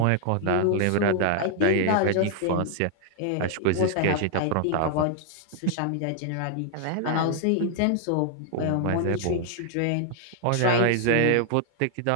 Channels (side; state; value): both; different; correlation 0.00